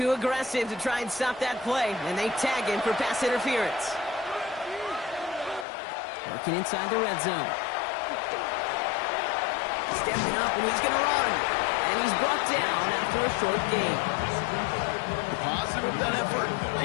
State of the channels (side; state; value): right; drops out; at 5.7 s